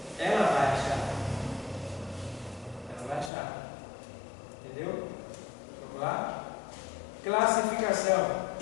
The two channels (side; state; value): right; drops out; at 3.3 s